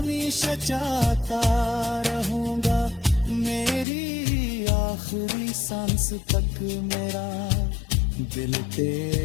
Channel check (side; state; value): right; drops out; at 3.9 s